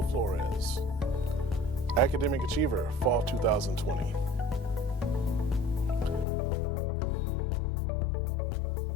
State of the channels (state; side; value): drops out; right; at 6.2 s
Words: Flores, Academic Achiever, Fall 2020. Dulce Frosto,